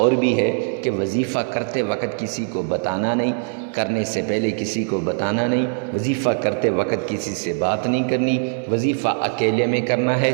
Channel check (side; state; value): left; silent; digital silence